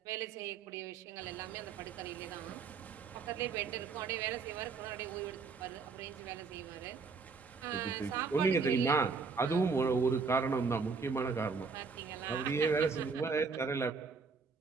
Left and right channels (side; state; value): left; quieter; 4.9 dB